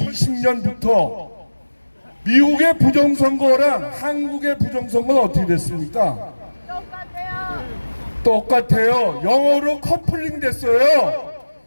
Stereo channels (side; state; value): both; inverted; correlation -1.00